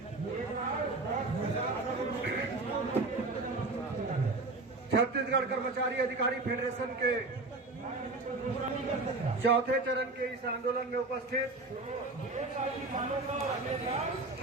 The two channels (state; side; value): quieter; left; 3.3 dB